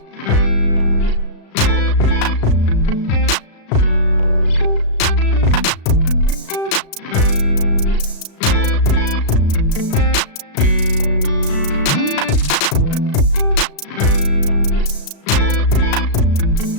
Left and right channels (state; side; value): late; right; 36 ms